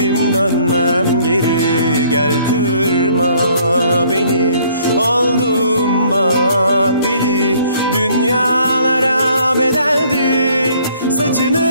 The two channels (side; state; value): both; inverted; correlation -0.61